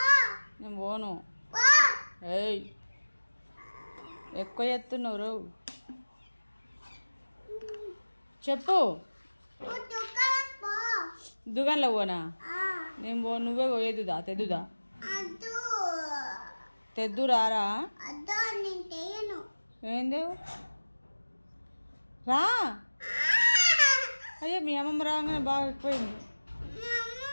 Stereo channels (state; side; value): inverted; both; correlation -1.00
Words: నేను పోను. ఏయ్, ఎక్కువ ఎత్తున్నావు. చెప్పు, దుకాణంలో పోనా? నేను పో, నువ్వే పోయేదుదా? తెద్దుదా? తెద్దు రారా? ఏందేవు రా. అయ్యో, మీ అమ్మమ్మ రాగానే బాగా ఎక్కువైంది.